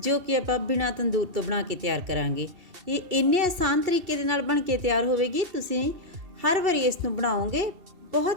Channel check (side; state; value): left; late; 2.7 ms